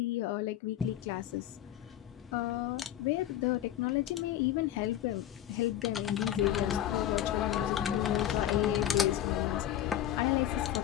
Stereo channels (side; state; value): right; quieter; 11.8 dB